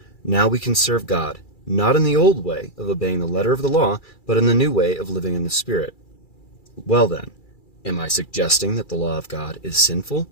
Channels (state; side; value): late; right; 2.3 ms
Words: Now we can serve God, not in the old way of obeying the letter of the law, but in the new way of living in the Spirit. Well then, am I suggesting that the law of God is sinful?